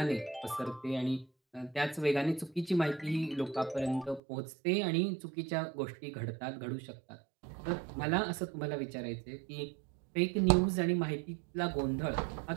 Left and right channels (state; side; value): drops out; left; at 4.2 s